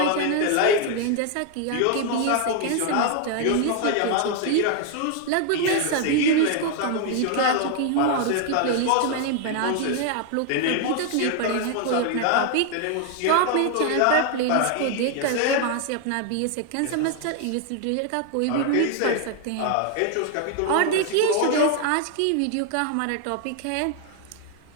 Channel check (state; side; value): different; both; correlation 0.00